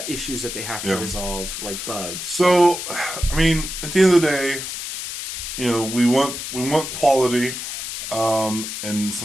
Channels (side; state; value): left; noise; hiss, 6 dB below the sound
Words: issues that they have to resolve, like bugs. So, I mean, at the end of the day, we want quality, and